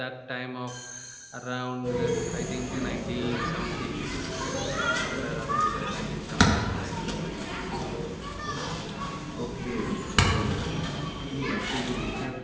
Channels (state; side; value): identical; both; correlation 1.00